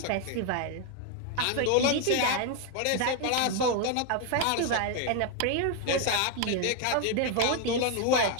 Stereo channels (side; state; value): both; different; correlation 0.00